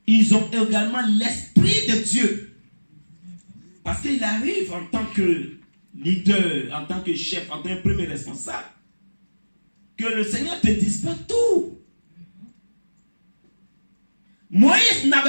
ils ont également l'esprit de Dieu. Parce qu'il arrive en tant que leader, en tant que chef, en tant que premier responsable, que le Seigneur ne te dise pas tout. Moïse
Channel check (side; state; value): both; inverted; correlation -1.00